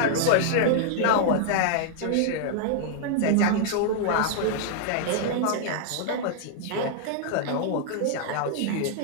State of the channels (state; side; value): different; both; correlation -0.01